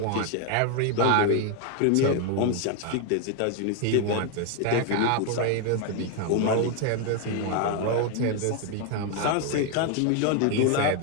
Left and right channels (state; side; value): different; both; correlation 0.01